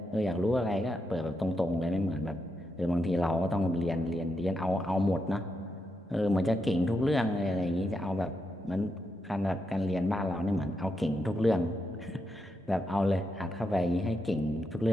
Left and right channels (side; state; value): both; normal; correlation 0.84